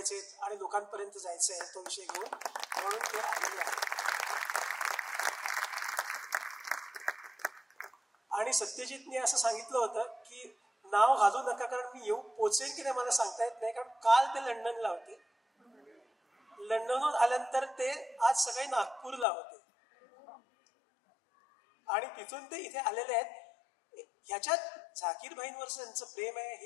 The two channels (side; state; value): right; drops out; at 19.2 s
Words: आणि लोकांपर्यंत जायचं आहे तो विषय घेऊन, म्हणून ते आलेले आहे. आणि सत्यजितने असं सांगितलं होतं की नाव घालू नका कारण मी येऊ पोचेन की नाही मला सांगता येत नाही, कारण काल ते लंडनला होते, लंडनहून आल्यानंतर ते आज सकाळी नागपूरला होते आणि तिथून ते इथे आलेले आहेत. ह्याच्यात झाकीरबाईंवरचं त्यांचं प्रेम आहे